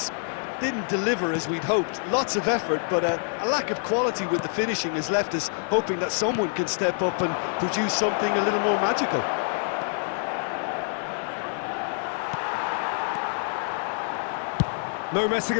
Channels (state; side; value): silent; right; 61 dB below the other